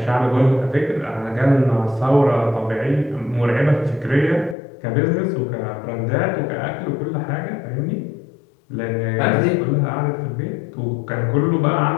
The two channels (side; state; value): right; drops out; at 4.5 s